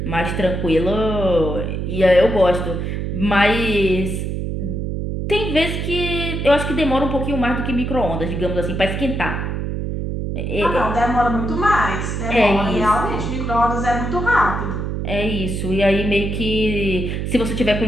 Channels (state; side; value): noise; right; hum, 3 dB below the sound